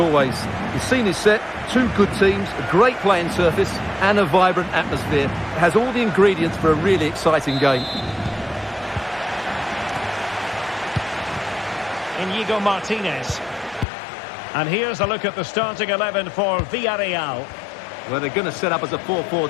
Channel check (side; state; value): right; drops out; at 13.9 s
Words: The scene is set, two good teams, a great playing surface, and a vibrant atmosphere. It has all the ingredients for a really exciting game. Inigo Martinez. And here's a look at the starting 11 for Villarreal. Well, they're going to set up as a